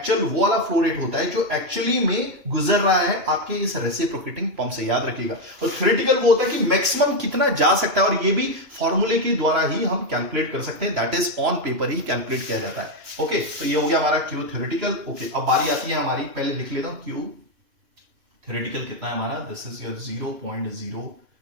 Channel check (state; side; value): late; left; 2.9 ms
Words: वो वाला फ्लो रेट होता है जो एक्चुअली में गुजर रहा है आपके इस रेसिप्रोकेटिंग पंप से, याद रखिएगा। और थ्योरेटिकल वो होता है कि मैक्सिमम कितना जा सकता है, और ये भी फॉर्मूले के द्वारा ही हम कैलकुलेट कर सकते हैं, that is on paper he calculate किया जाता है। ओके, तो ये हो गया हमारा क्यू थ्योरेटिकल। ओके, अब बारी आती है हमारी, पहले लिख लेता हूं क्यू थ्योरेटिकल कितना है हमारा, this is your